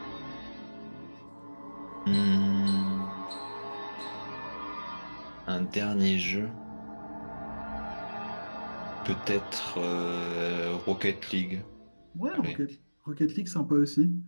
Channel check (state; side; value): inverted; both; correlation -1.00